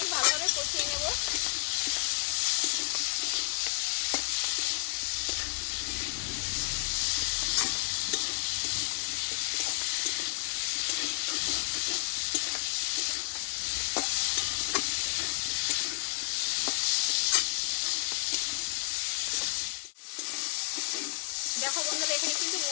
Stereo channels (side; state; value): right; silent; digital silence